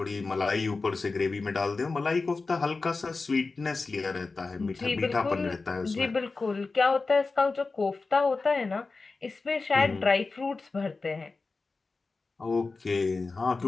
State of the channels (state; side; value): quieter; right; 3.9 dB